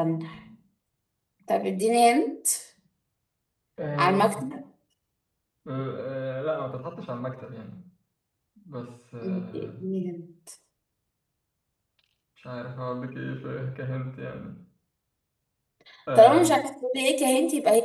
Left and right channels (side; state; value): both; identical; correlation 1.00